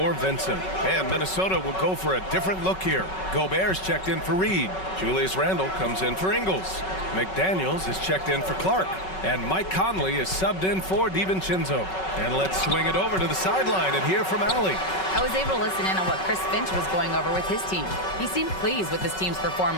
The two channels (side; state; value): right; late; 5.3 ms